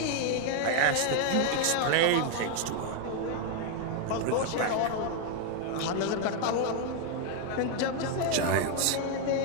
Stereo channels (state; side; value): different; both; correlation 0.00